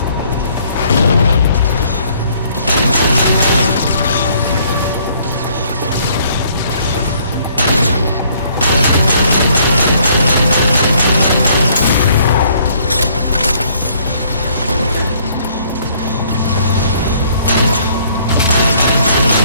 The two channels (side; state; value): both; inverted; correlation -0.63